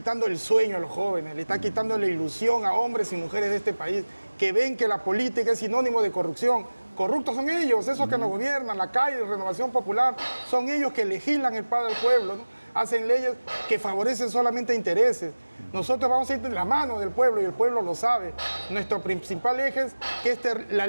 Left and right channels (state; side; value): inverted; both; correlation -1.00